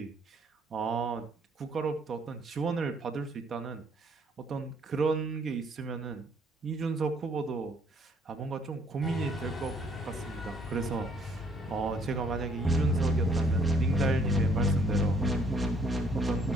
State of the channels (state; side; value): normal; both; correlation 0.63